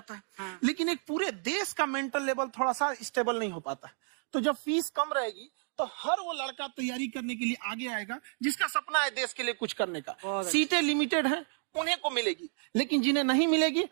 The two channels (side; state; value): left; silent; 57 dB below the other